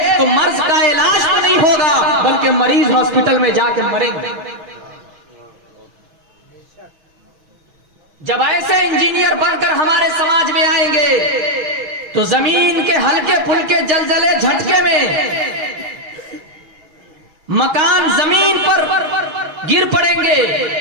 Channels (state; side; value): late; left; 6.2 ms